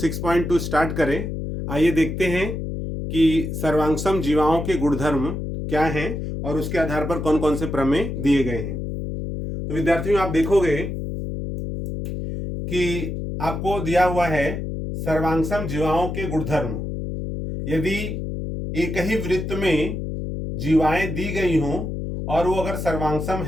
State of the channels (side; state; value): left; noise; hum, 5 dB below the sound